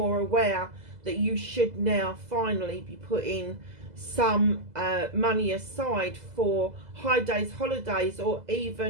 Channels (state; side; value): late; left; 2.0 ms